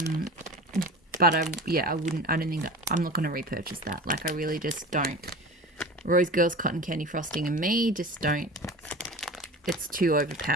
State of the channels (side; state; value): both; normal; correlation 0.35